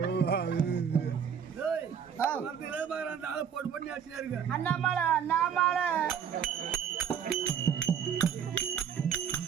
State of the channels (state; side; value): quieter; left; 7.9 dB